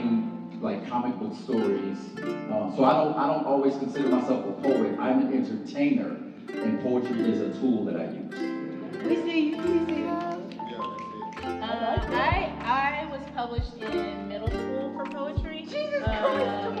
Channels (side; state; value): both; identical; correlation 1.00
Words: like comic book stories, so I don't always consider myself a poet. I'm an entertainer, and poetry is a tool that I use. We see you. I was published in middle school for poetry. Jesus Christ!